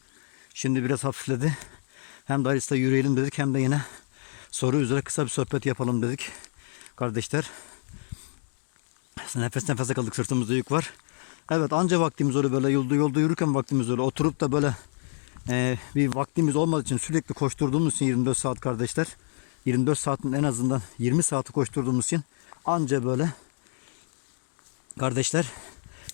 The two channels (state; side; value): silent; right; digital silence